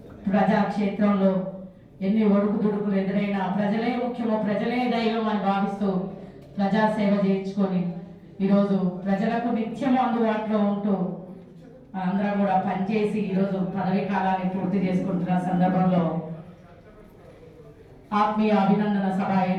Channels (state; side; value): identical; both; correlation 1.00